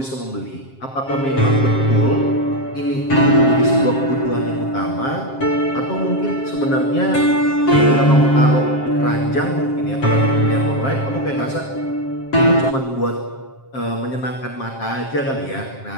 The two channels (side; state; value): right; late; 7.5 ms